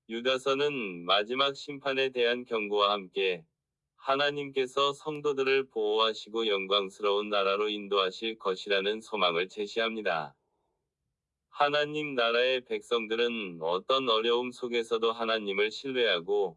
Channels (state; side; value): identical; both; correlation 1.00